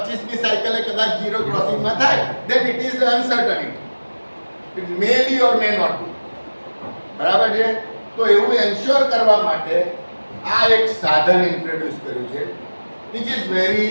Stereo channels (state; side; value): inverted; both; correlation -1.00